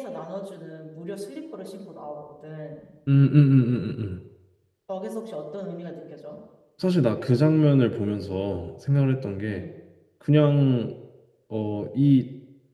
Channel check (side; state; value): both; identical; correlation 1.00